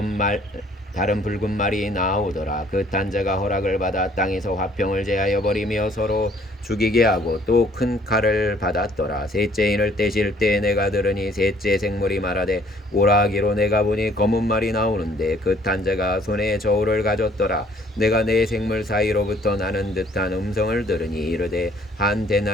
다른 붉은 말이 나오더라. 그 탄자가 허락을 받아 땅에서 화평을 제하여 버리며 서로 죽이게 하고 또 큰 칼을 받았더라. 셋째인을 떼실 때 내가 들으니 셋째 생물이 말하되 오라 하기로 내가 보니 검은 말이 나오는데 그 탄자가 손에 저울을 가졌더라. 내가 내 생물 사이로부터 나는 듯한 음성을 들으니 이르되 한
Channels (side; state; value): both; normal; correlation 0.60